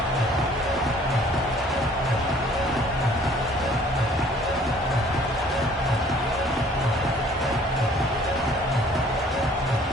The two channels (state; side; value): normal; both; correlation 0.55